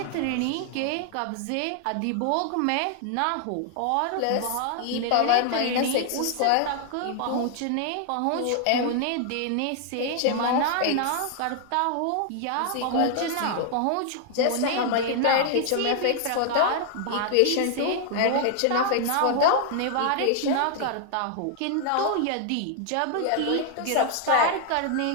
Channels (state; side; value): different; both; correlation 0.00